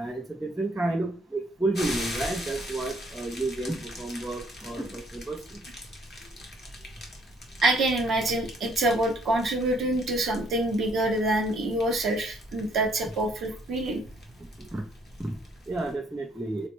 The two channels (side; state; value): both; normal; correlation 0.65